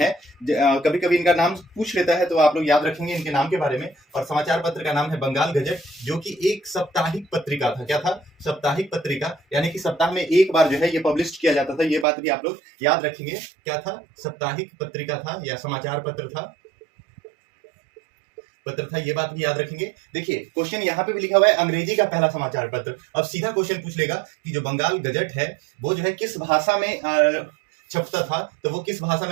कभी कभी इनका नाम पूछ लेता है, तो आप लोग याद रखेंगे इनके नाम के बारे में। और समाचार पत्र का नाम है बंगाल गजट, जो कि एक साप्ताहिक पत्रिका था। क्या था? साप्ताहिक पत्रिका, यानी कि सप्ताह में एक बार जो है ये पब्लिश किया जाता था। ये बात भी आप लोग याद रखेंगे। क्या था? साप्ताहिक पत्रिका था या समाचार पत्र था, ये बात भी याद रखेंगे। देखिए, क्वेश्चन यहाँ पे भी लिखा हुआ है अंग्रेजी का पहला समाचार पत्र। अब सीधा क्वेश्चन पूछ लेगा कि जो बंगाल गजट है वो जो है किस भाषा में छपता था, तो वो किस भाषा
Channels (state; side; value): drops out; left; at 12.1 s